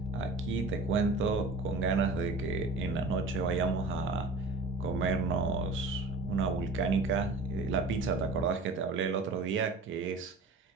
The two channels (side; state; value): left; quieter; 3.3 dB